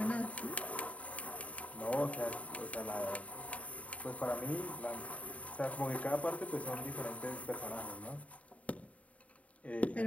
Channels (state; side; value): late; right; 0.067 ms